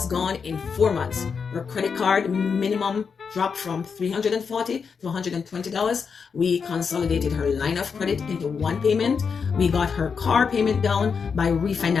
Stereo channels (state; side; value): quieter; right; 5.9 dB